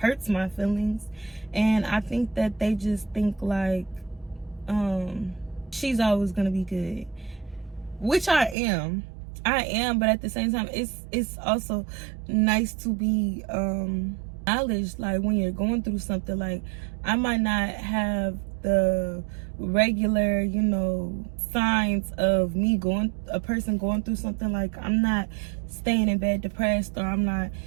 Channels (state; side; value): drops out; left; at 8.6 s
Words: my feelings. And I think that they just think like she's always gonna be good, which I am, but at the same time it's also nice to be acknowledged. Like when you're going through something, like I might not have the regular, you know, signs of a person going through something. Like I'm not staying in bed depressed, or I'm not,